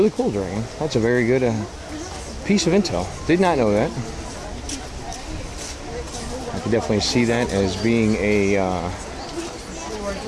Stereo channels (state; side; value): identical; both; correlation 1.00